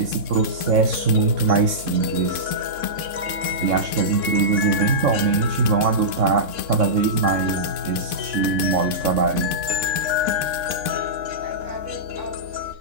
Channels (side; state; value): left; late; 3.6 ms